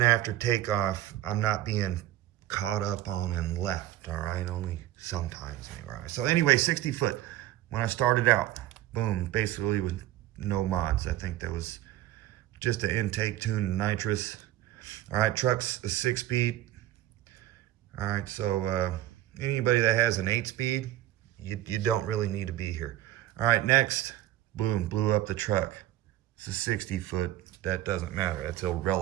after takeoff, I'm not being caught up on and left, all right? Only sometimes, all right? So anyway, 60 foot, when I started out, boom, basically with no mods. I think that was just an intake tune and nitrous. All right, truck's a 6-speed. All right, so Anybody that has an 8-speed, you don't really need to be here. All right, next, boom, blew up the truck. It's a 60-foot. That doesn't matter. That's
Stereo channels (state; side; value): quieter; left; 13.8 dB